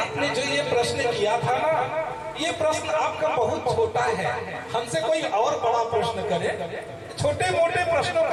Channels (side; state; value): both; identical; correlation 1.00